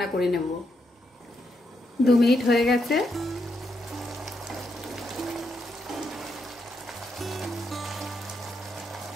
করে নেব। 2 মিনিট হয়ে গেছে।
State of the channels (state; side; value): normal; both; correlation 0.81